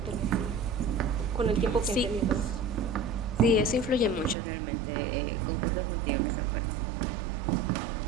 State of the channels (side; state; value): left; drops out; at 4.4 s